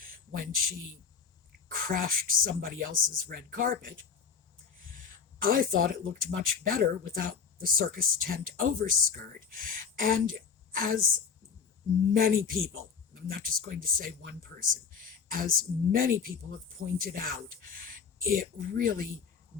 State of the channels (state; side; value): quieter; right; 6.3 dB